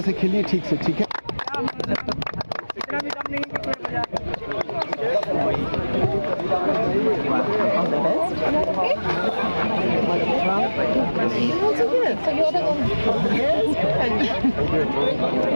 से खेलिए ठीक से, ठीक है। इतना भी कम नहीं कि कोई मजा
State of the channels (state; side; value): inverted; both; correlation -1.00